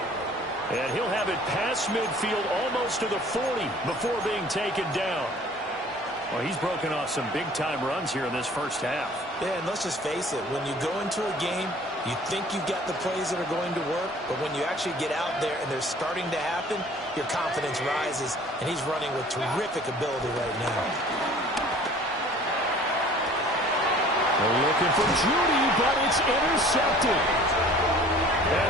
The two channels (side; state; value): both; normal; correlation 0.50